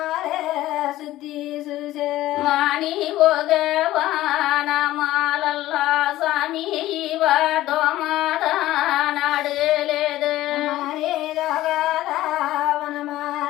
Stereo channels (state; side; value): quieter; right; 15.5 dB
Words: సుత్తి చూసే మాని ఓగవానమాలల్లా సామి దోమాద నాడలేదు హరే దగదా